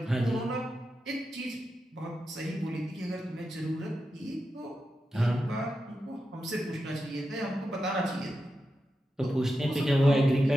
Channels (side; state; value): both; normal; correlation 0.89